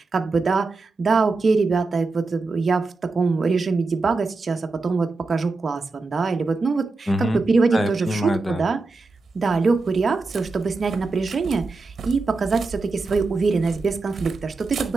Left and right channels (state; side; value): quieter; left; 3.7 dB